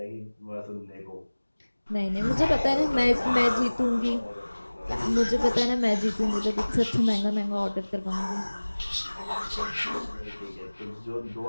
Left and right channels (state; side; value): inverted; both; correlation -1.00